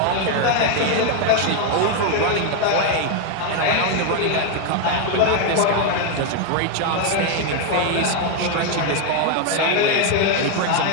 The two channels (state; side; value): different; both; correlation 0.01